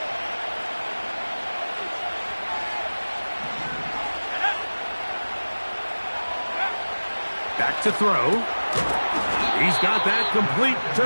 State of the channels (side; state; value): both; inverted; correlation -1.00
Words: Back to throw. He's got that complete to